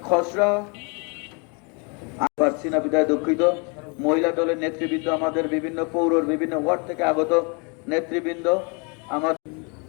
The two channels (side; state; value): right; quieter; 33.2 dB